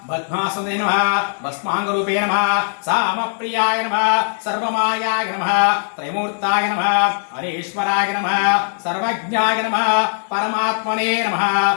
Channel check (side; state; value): right; silent; digital silence